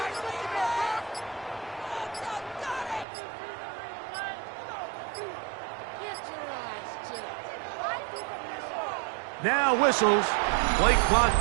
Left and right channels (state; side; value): drops out; left; at 3.1 s